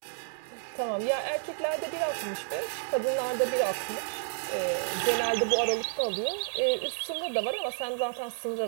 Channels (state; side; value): silent; left; digital silence